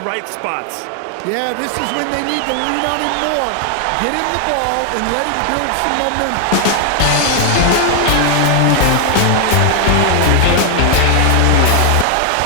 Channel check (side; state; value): both; different; correlation 0.00